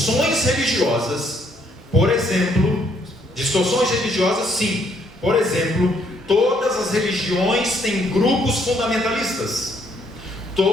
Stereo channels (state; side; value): normal; both; correlation 0.69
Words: religiosas, por exemplo, sim. Por exemplo, todas as religiões têm grupos fundamentalistas.